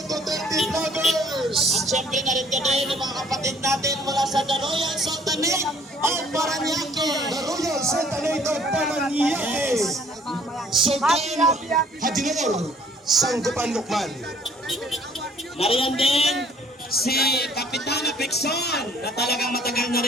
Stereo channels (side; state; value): both; normal; correlation 0.58